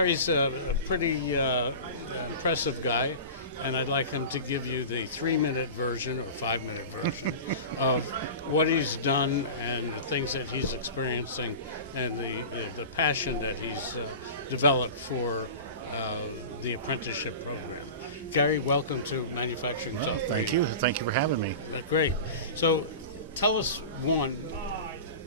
a pretty impressive guy, and I'd like him to give you the 3-minute version or 5-minute version of what he's done and the things that he's experiencing and the passion that he's developed for the apprenticeship program. Gary, welcome to Manufacturing Talk Radio. Thank you. Thank you for having me. Great. So tell us, one,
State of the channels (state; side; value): inverted; both; correlation -0.33